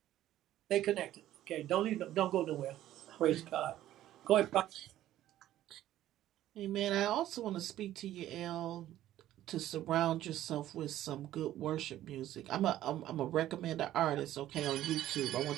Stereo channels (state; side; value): quieter; left; 13.3 dB